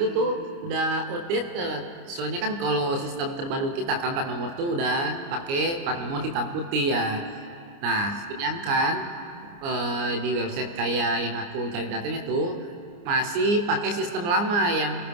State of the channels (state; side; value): late; left; 29 ms